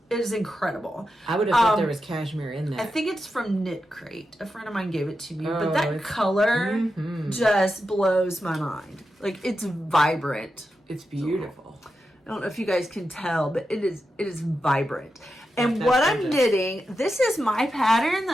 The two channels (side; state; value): both; normal; correlation 0.89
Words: It is incredible. I would have thought there was cashmere in there. I think it's from Knit Crate. A friend of mine gave it to me. But that color just blows my mind. Like, it's vibrant. It's beautiful. I don't know if you guys can tell, but it is vibrant. And what I'm knitting, this is my pattern